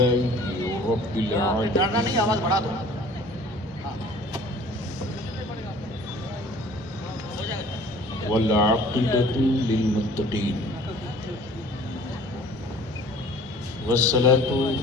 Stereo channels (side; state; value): both; normal; correlation 0.49